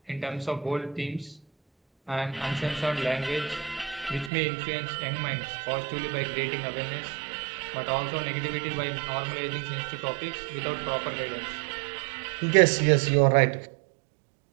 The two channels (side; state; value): left; drops out; at 4.3 s